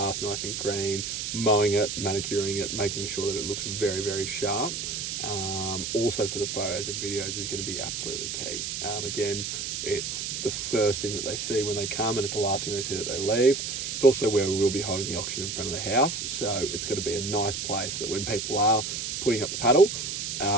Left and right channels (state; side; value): noise; right; hiss, 3 dB below the sound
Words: nice and green, mowing it, manicuring it, making sure that it looks very, very sharp. Also for the photos and videos is going to be absolutely key. Again, it's the first thing that they see when they come, and it's the last thing they see that they leave. It's also where we will be holding the auction in front of the house, so it's going to be a nice place that when people are putting up the paddle,